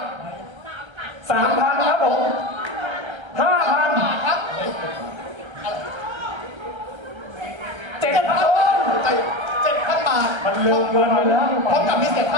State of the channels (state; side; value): late; left; 1.3 ms